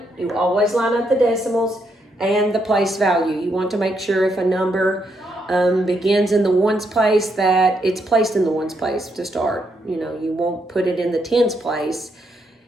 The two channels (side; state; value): both; normal; correlation 0.78